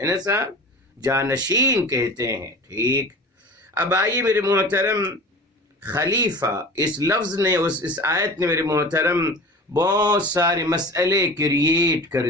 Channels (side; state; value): both; normal; correlation 0.36